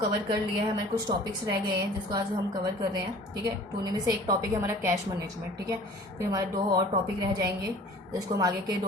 कर लिया है। हमारे कुछ टॉपिक्स रह गए हैं जिसको आज हम कवर कर रहे हैं। ठीक है, तो उनमें से एक टॉपिक है हमारा कैश मैनेजमेंट। ठीक है, फिर हमारे दो और टॉपिक रह जाएंगे जिसको हम आगे के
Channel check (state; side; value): normal; both; correlation 0.47